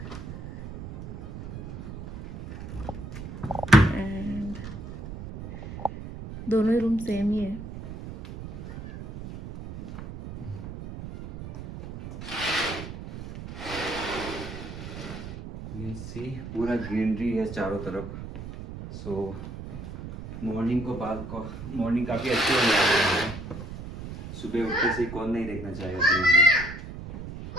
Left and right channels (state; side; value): noise; right; rumble, 10 dB below the sound